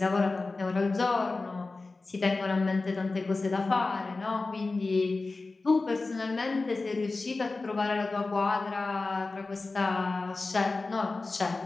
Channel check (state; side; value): quieter; right; 3.6 dB